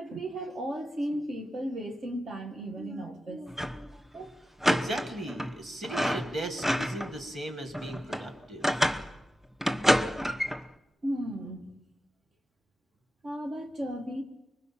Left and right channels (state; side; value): normal; both; correlation 0.91